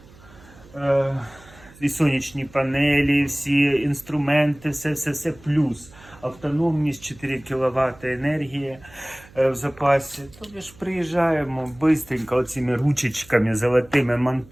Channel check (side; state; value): right; noise; hum, 23 dB below the sound